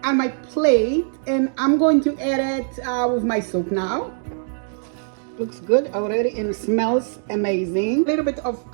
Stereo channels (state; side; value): silent; left; digital silence